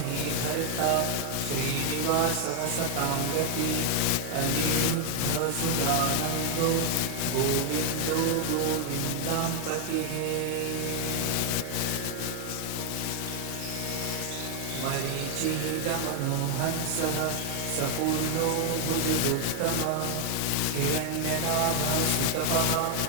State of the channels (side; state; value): both; different; correlation 0.00